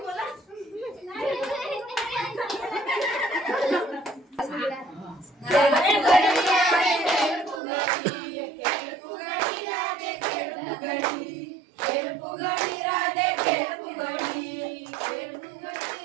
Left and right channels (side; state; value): left; drops out; at 7.6 s